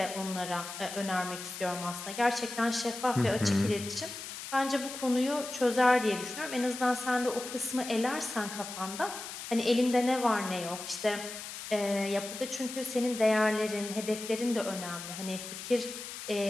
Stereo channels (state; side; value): noise; left; hiss, 9 dB below the sound